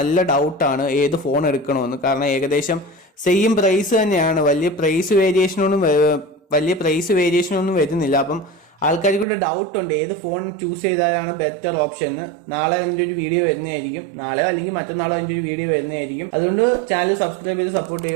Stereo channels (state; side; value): drops out; left; at 9.2 s